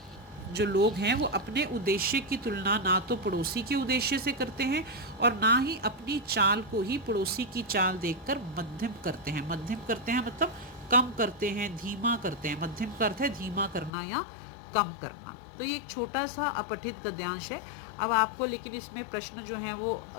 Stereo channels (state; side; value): drops out; right; at 13.9 s